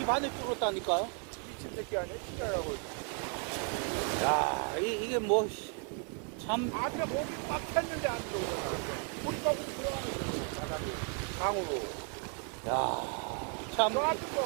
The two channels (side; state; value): left; quieter; 39.3 dB